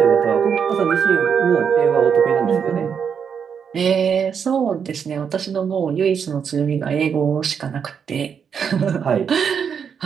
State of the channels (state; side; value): quieter; left; 7.1 dB